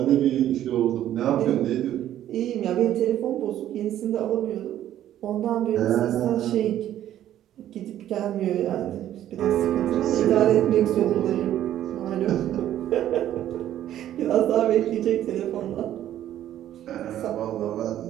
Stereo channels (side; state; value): left; quieter; 11.9 dB